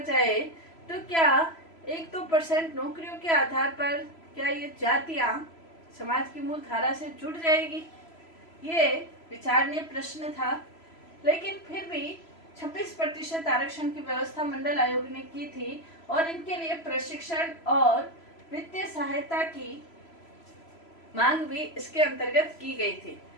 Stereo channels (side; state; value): right; late; 3.0 ms